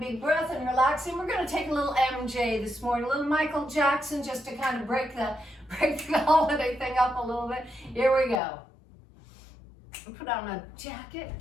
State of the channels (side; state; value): right; drops out; at 8.4 s